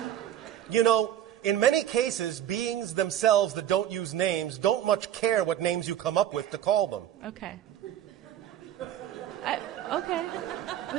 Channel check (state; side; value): quieter; left; 11.2 dB